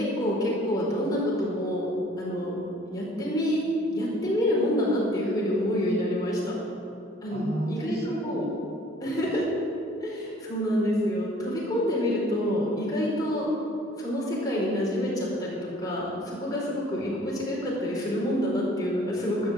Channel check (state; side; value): normal; both; correlation 0.54